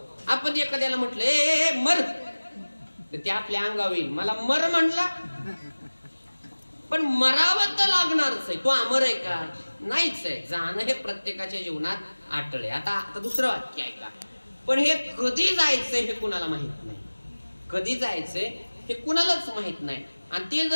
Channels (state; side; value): inverted; both; correlation -1.00